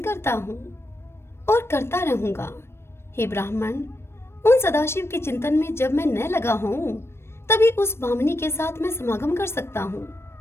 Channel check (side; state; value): right; late; 0.12 ms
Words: करता हूँ और करता रहूंगा। हे ब्राह्मण, उन सदाशिव के चिंतन में जब मैं न लगा हूँ, तभी उस भामिनी के साथ मैं समागम कर सकता हूँ।